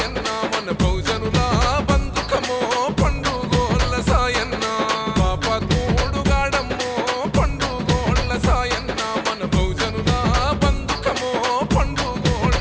మన బహుజనుల బంధుకమో పండుగోళ్ళ సాయన్న పాపాత్ముడు గాడమ్మో పండుగోళ్ళ సాయన్న మన బహుజనుల బంధుకమో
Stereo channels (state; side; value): identical; both; correlation 1.00